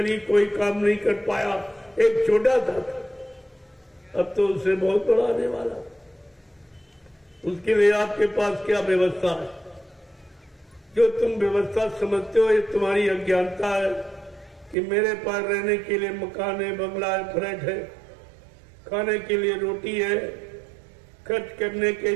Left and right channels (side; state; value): left; drops out; at 14.8 s